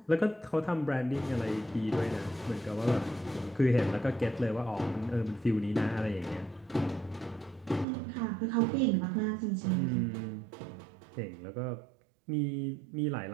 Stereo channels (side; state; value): left; drops out; at 7.9 s